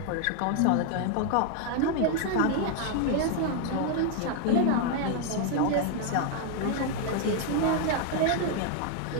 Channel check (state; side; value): different; both; correlation 0.00